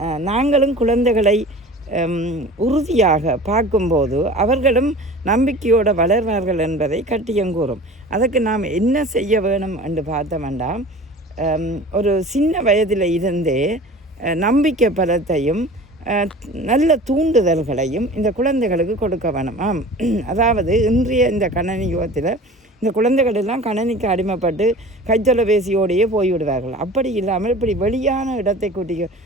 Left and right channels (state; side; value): normal; both; correlation 0.40